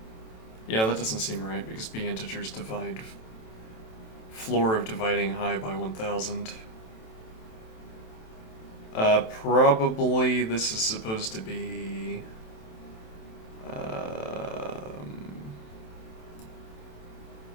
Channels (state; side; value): late; right; 27 ms